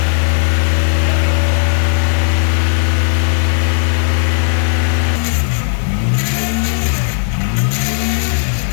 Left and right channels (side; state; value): right; silent; digital silence